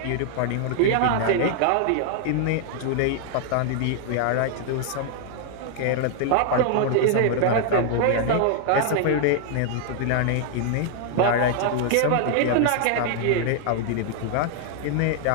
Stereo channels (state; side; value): different; both; correlation 0.00